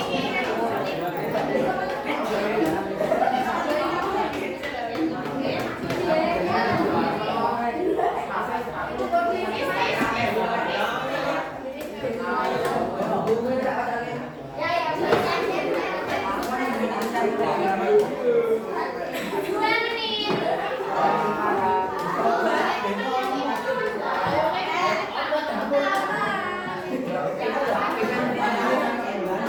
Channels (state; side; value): identical; both; correlation 1.00